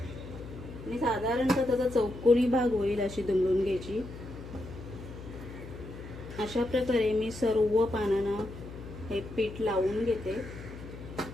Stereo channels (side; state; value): left; noise; hum, 13 dB below the sound